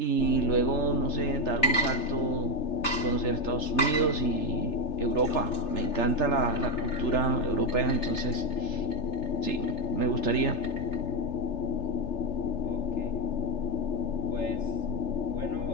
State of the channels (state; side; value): late; right; 3.3 ms